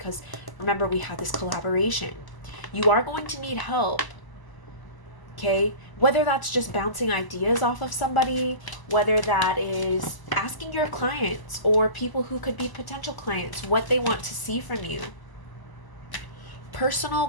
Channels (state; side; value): late; right; 1.0 ms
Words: remember, we have this collaboration. You are going to need help. Okay, whether that's just bouncing ideas off of somebody, whether that is asking your clients or people who could be potential clients what they want to see from you. Personal